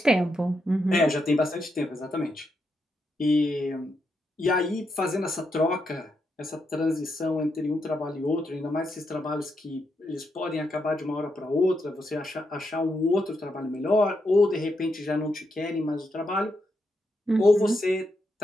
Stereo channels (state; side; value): normal; both; correlation 0.82